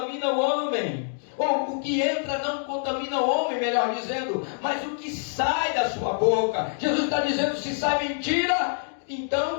o homem. Ou o que entra não contamina o homem, melhor dizendo, mas o que sai da sua boca. Jesus está dizendo, se sai mentira,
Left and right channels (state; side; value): silent; right; digital silence